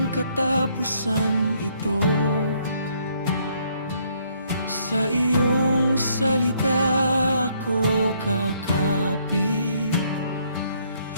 katapusan ito, sa iyong salita ako kakapit,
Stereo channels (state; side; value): inverted; both; correlation -0.68